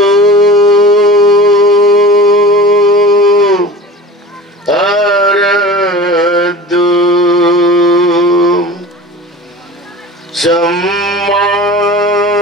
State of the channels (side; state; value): both; normal; correlation 0.36